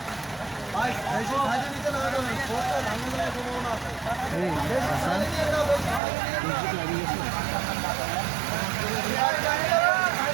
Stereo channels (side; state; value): left; drops out; at 6.0 s